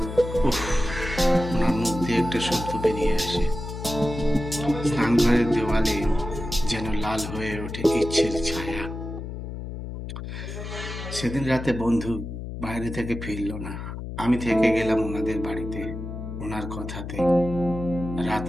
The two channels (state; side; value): noise; left; hum, 8 dB below the sound